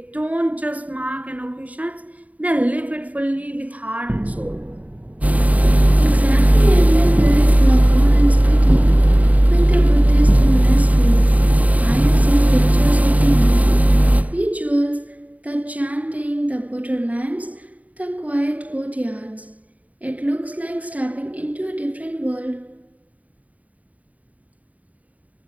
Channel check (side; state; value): left; late; 0.071 ms